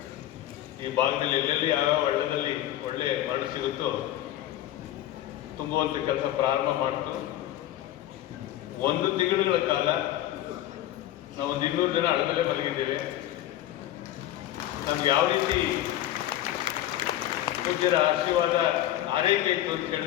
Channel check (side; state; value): right; quieter; 13.3 dB